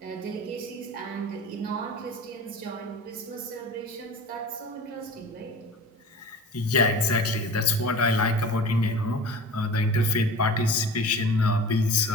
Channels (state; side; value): normal; both; correlation 0.36